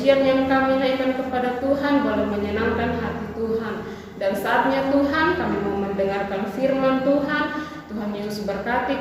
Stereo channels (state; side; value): identical; both; correlation 1.00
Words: yang kami naikkan kepada Tuhan boleh menyenangkan hati Tuhan. Dan saatnya Tuhan kami mau mendengarkan firman Yesus berkati